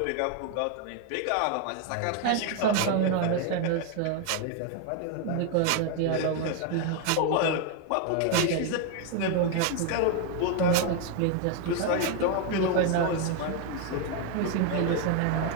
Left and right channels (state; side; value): different; both; correlation 0.01